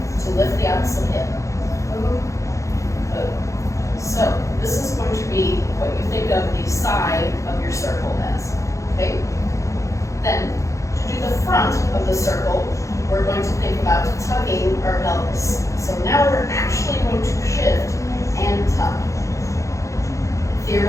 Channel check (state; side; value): late; right; 0.15 ms